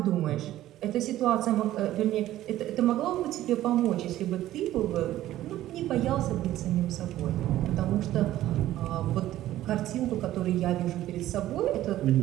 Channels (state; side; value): quieter; left; 14.1 dB